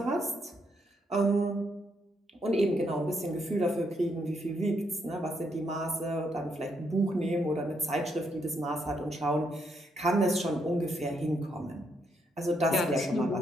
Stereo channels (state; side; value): normal; both; correlation 0.76